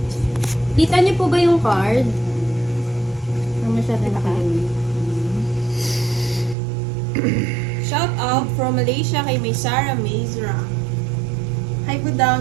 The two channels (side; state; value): left; drops out; at 6.6 s